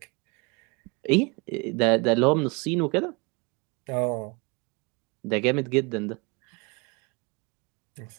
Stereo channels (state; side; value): quieter; left; 29.0 dB